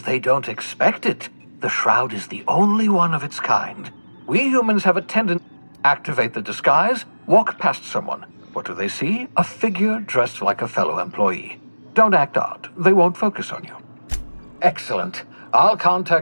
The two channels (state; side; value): inverted; both; correlation -1.00